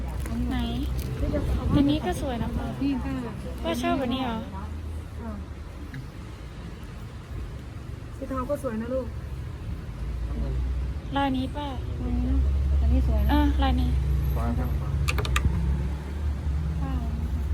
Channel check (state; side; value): identical; both; correlation 1.00